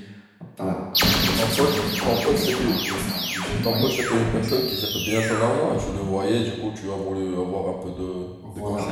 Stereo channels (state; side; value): identical; both; correlation 1.00